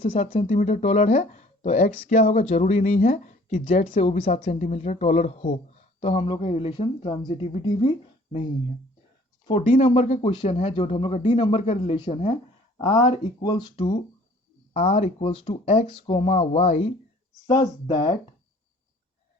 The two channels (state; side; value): normal; both; correlation 0.54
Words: 7 सेंटीमीटर टोलर है, तो x क्या होगा, जरूरी नहीं है कि z से वो भी 7 सेंटीमीटर टोलर हो, तो हम लोग का रिलेशन ट्रांजिटिविटी भी नहीं है। फॉर डी नंबर का क्वेश्चन है, जो हम लोग का डी नंबर का रिलेशन है, r equals to x comma y such that